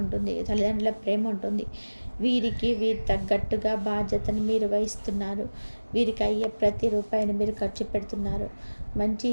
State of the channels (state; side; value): inverted; both; correlation -1.00